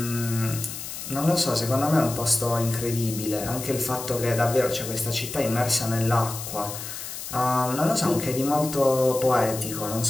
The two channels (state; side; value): noise; left; hiss, 9 dB below the sound